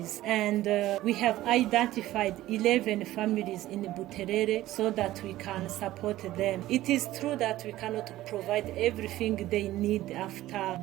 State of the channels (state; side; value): quieter; left; 15.5 dB